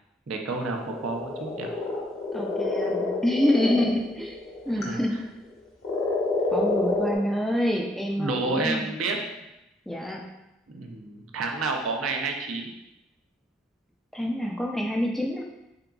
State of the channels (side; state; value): both; normal; correlation 0.68